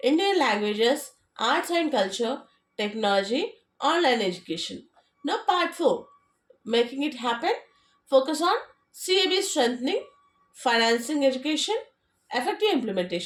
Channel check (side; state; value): both; identical; correlation 1.00